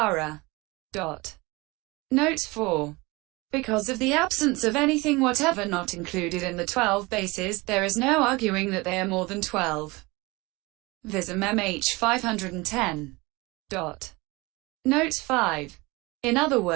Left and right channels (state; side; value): quieter; left; 23.8 dB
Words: Note 4. Because of the absence of anything whatever not included in the 12 bases, there is no arguing that they are more than 12. Vism-mhþ 510. Note 5. In other